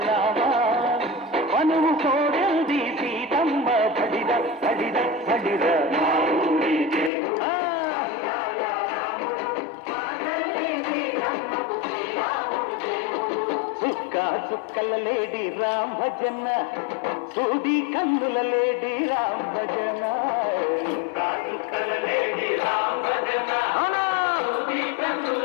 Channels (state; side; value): drops out; right; at 7.1 s